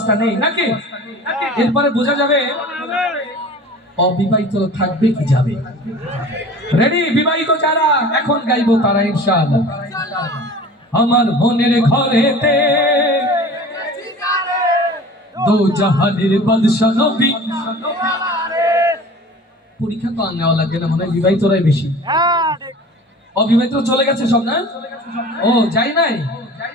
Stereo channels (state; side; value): normal; both; correlation 0.41